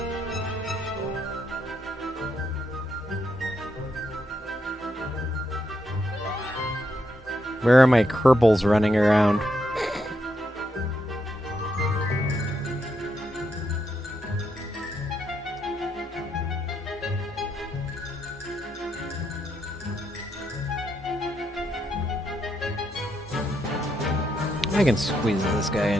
Where are my Kerbals running around? I can squeeze this guy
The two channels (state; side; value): normal; both; correlation 0.80